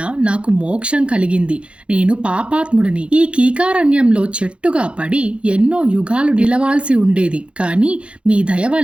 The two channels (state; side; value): late; left; 0.059 ms